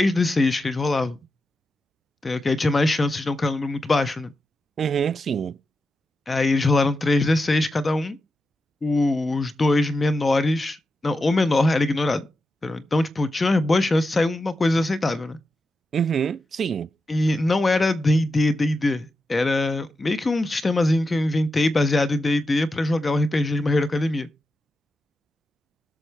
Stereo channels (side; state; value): both; normal; correlation 0.89